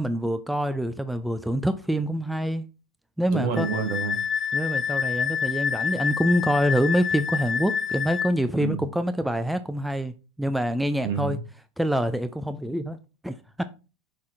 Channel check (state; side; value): normal; both; correlation 0.81